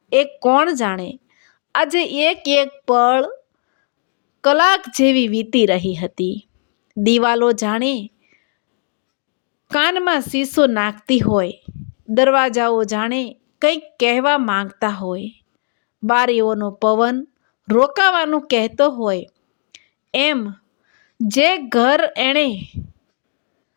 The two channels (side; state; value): right; silent; digital silence